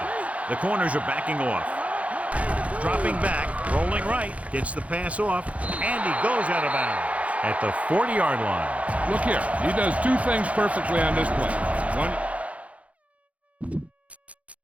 The corners are backing off. Dropping back, rolling right, gets the pass off, and he goes out of bounds at the 40-yard line. Look here, he does 2 things perfectly on this play. 1.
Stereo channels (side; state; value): left; late; 0.065 ms